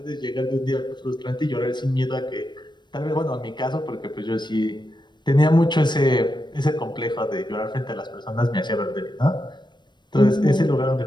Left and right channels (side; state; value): right; late; 0.22 ms